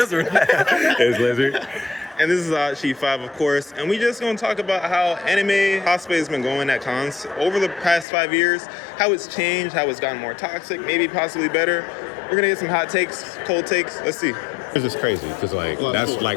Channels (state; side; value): drops out; right; at 8.1 s